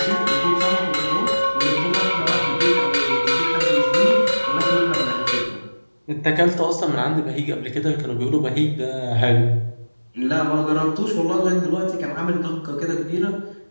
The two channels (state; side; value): inverted; both; correlation -1.00